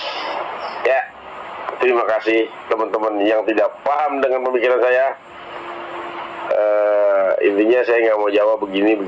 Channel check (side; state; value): both; identical; correlation 1.00